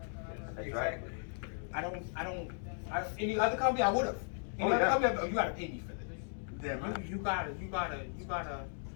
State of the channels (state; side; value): silent; right; 54 dB below the other